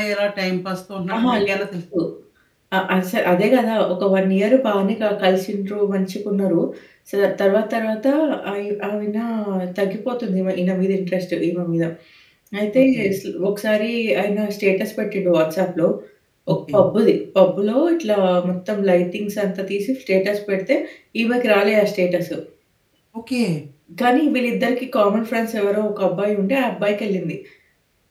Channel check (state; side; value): identical; both; correlation 1.00